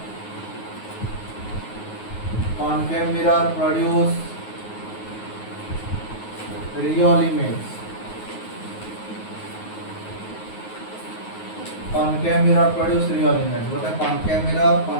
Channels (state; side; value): late; right; 9.4 ms